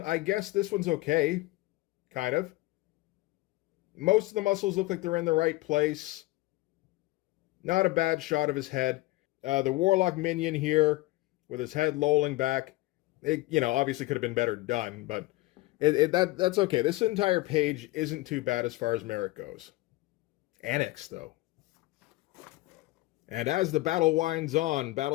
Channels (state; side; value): quieter; right; 19.7 dB